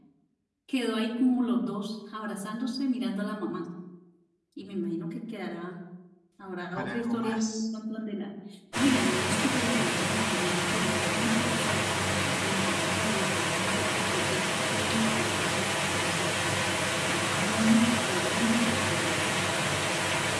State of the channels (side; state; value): both; identical; correlation 1.00